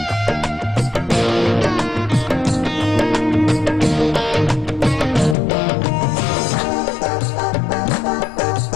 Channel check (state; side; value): drops out; right; at 5.4 s